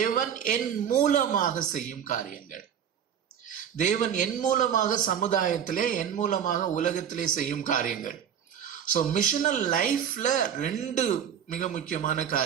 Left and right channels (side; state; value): left; quieter; 8.7 dB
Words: என் மூலமாக செய்யும் காரியங்கள். தேவன் என் மூலமாக சமுதாயத்திலே, என் மூலமாக உலகத்திலே செய்யும் காரியங்கள். ஸோ மிஷனல் லைஃப்ல 2 மிக முக்கியமான